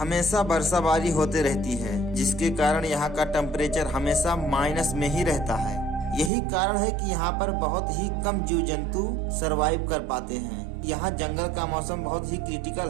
बरसाबारी होते रहती है, जिसके कारण यहाँ का टेम्परेचर हमेशा माइनस में ही रहता है। यही कारण है कि यहाँ पर बहुत ही कम जीव जंतु सरवाइव कर पाते हैं। यहाँ जंगल का मौसम बहुत ही क्रिटिकल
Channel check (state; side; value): drops out; left; at 6.3 s